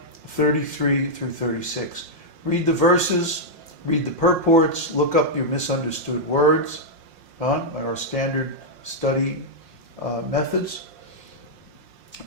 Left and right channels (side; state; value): left; late; 5.6 ms